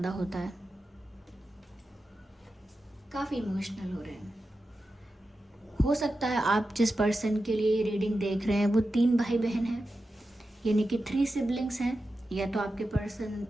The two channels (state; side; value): normal; both; correlation 0.91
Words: होता है। काफ़ी इमोशनल हो रहे हैं। हो सकता है आप जिस पर्सन के लिए रीडिंग देख रहे हैं वो 3 भाई बहन हैं, यानी कि 3 सिबलिंग्स हैं। या तो आपके पर्सन